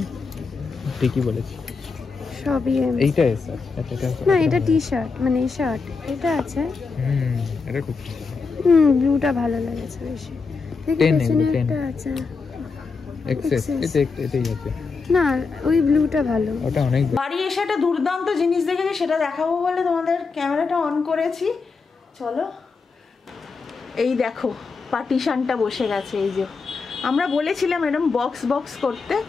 ঠিকই বলেছি, সবই এম। এইটা এস আছে। আচ্ছা, না এটা টি শার্ট, মানে এই শার্ট এটা আছে। এটা খুব ব্লুটা ভালো লাগেছে বেশি। দেখি পেছনে একটা আছে এক্সেস, এটাই আছে না, ওই ব্লুটা ভালো। ওটা অনেক। বাড়ি এসে একটা দুর্দান্ত জিনিস দেখেছি, সেটা দেখাবো বলে তোমাদের ক্যামেরাটা অন করেছি। চলো, এই দেখো পার্টিশনটা বসে গেছে। এই যে আমরা বলেছিলাম এরকম বক্স বক্স করতে,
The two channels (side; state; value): right; quieter; 4.7 dB